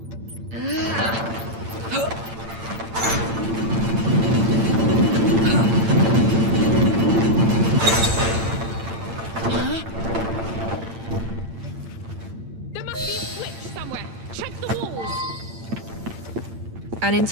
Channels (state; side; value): late; left; 8.8 ms